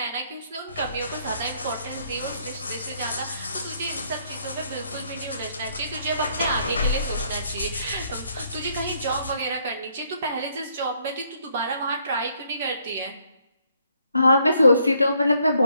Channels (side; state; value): both; inverted; correlation -0.69